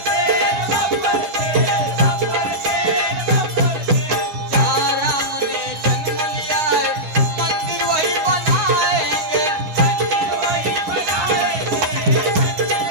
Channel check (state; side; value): late; left; 9.7 ms